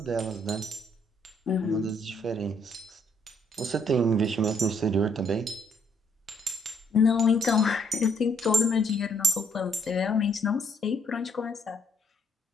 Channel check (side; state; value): both; normal; correlation 0.69